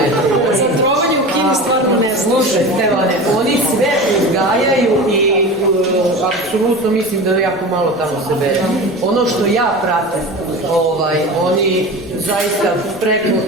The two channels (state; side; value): noise; left; rumble, 25 dB below the sound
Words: Za trovanje u Kini stvarno ne znam. Slušaj, Stevane, oni sve uzgajaju i apsolutno mislim da jako malo tamo se bere. Ono što ja pratim, oni zaista preko